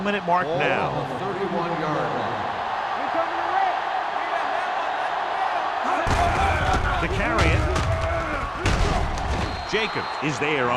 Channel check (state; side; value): identical; both; correlation 1.00